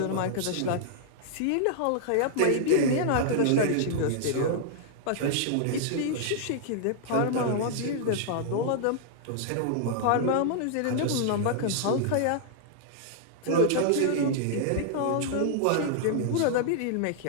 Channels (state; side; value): different; both; correlation -0.01